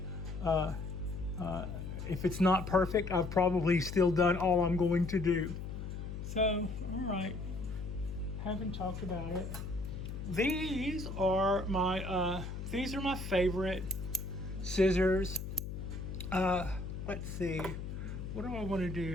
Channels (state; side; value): noise; left; hum, 7 dB below the sound